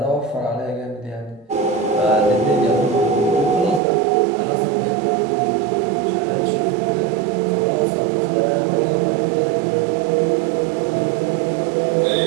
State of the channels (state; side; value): drops out; left; at 3.8 s